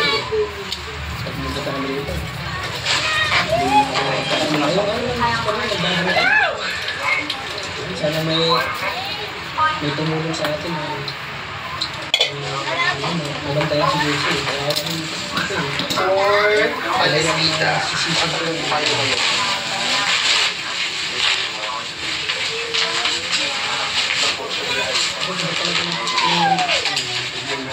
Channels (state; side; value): identical; both; correlation 1.00